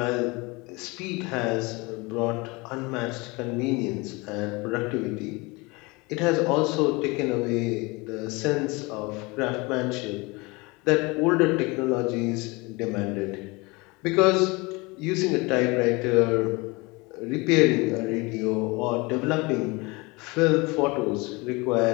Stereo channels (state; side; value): quieter; right; 25.5 dB